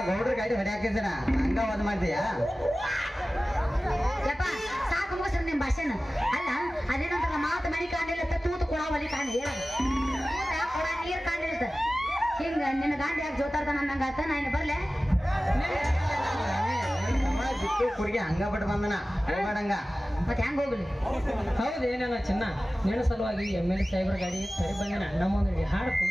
ಗೌಡ್ರ ಗಾಡಿ ಹೊಡ್ಯಾಕಿದ್ದೀನ ಹಂಗ ವಾದ್ ಮಾಡ್ತೀಯಾ ಯಪ್ಪ ಸಾಕು ಮುಗಿಸ್ರಿ ನಿಮ್ ಭಾಷೆನ ಅಲ್ಲ ಅದೇನಂತಾರ ಮಾತು ಮನಿ ಕಾಣಿಲ್ಲ ತೂತು ಕೊಡ ಒಲಿ ಕಾಣಿ ಹೇಳೋದು ಕೊಡ ನೀರ್ ಕಾಣಿಲ್ತ ಹಿಂಗ ನಿನ್ನ ಗಾಂಡಿ ಯಾಕೆ ಜೋತಾರ್ದ ನನ್ನಂಗ ಆತ ನಾ ಇನ್ನು ಬರ್ಲೆ ಬಿಟ್ಟು ಕುಡಿಗೆ ಹಂಗ ಬಿಟ್ಟು ಬಂದನ ಹೋಗಡಂಗ ಮತ್ತೆ ಹೆಂಗ್ ಹೋಗ್ಲಿ ಹೌದು ಏನೇನ ಚಿನ್ನ ನಿನ್ನ ಸಲುವಾಗಿ MLA ಸಾಹೇಬ್ರ ಗಾಡಿ ಸರಿ ಬಂದಿನ ನಮ್ಮೊಂದು ಹಾಡು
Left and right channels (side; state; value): both; normal; correlation 0.96